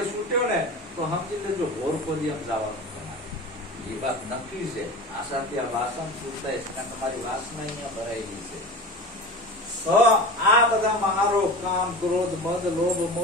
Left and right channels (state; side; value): normal; both; correlation 0.32